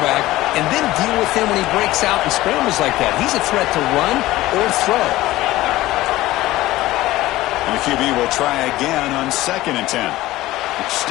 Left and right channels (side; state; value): right; quieter; 17.0 dB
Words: and then deal with him when he breaks out and scrambles like that. He's a threat to run or throw. And the QB will try again on 2nd and 10.